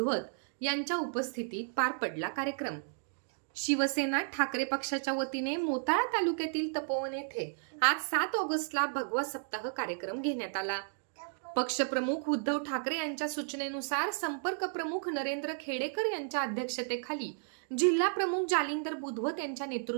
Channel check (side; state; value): left; silent; digital silence